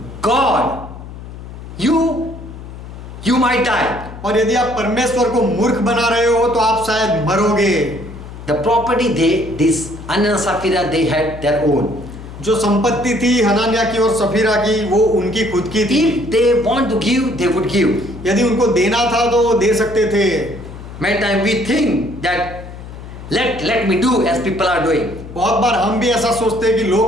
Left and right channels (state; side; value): noise; left; hum, 13 dB below the sound